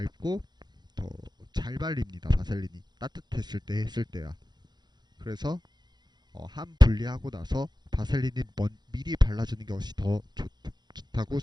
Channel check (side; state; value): left; late; 0.21 ms